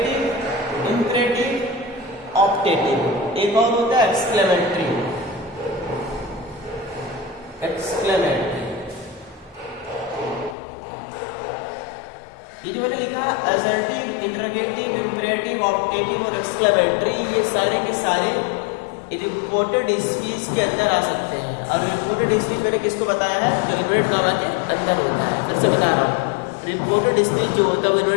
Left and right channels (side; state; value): right; drops out; at 10.6 s